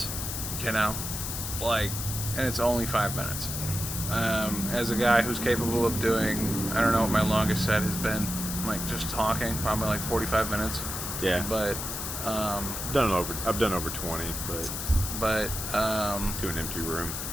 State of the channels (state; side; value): noise; left; hiss, 5 dB below the sound